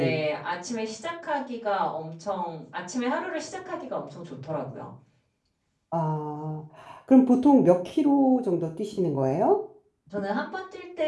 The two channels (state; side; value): identical; both; correlation 1.00